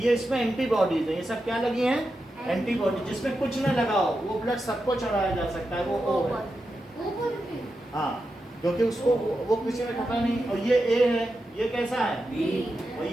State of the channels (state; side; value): normal; both; correlation 0.89